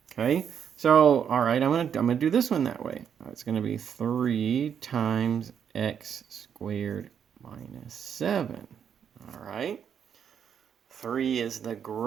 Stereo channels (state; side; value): quieter; left; 8.0 dB